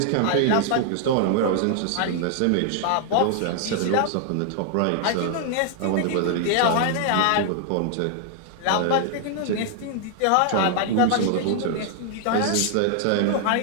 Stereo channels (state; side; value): different; both; correlation 0.00